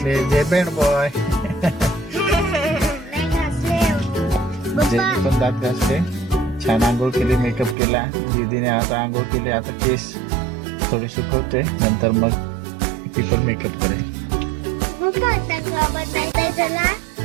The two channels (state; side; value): drops out; left; at 7.8 s